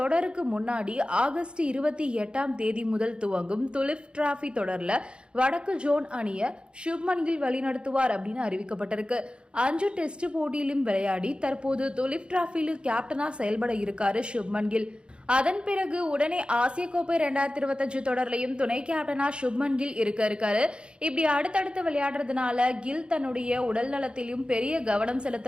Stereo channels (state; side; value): late; left; 0.055 ms